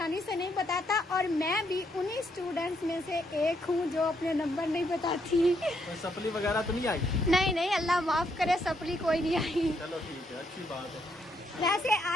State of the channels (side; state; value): both; normal; correlation 0.75